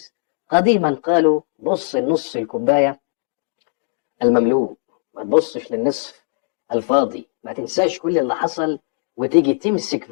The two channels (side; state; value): right; silent; digital silence